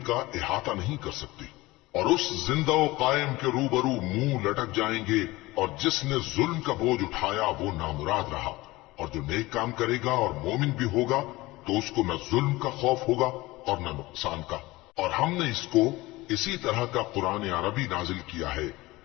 का इहाता नहीं कर सकती। और उस जिंदा व कायम के रूबरू मुंह लटक जाएंगे, और जिसने जुल्म का बोझ उठाया वो नामुराद रहा, और जो नेक काम करेगा और मोमिन भी होगा तो उसको न जुल्म का खौफ होगा और न नुकसान का। और हमने इसको इसी तरह का कुरान अरबी नाजिल किया है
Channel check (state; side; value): quieter; right; 20.0 dB